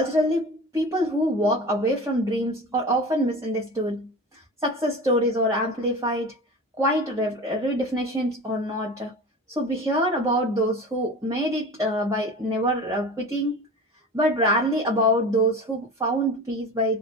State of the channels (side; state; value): both; normal; correlation 0.34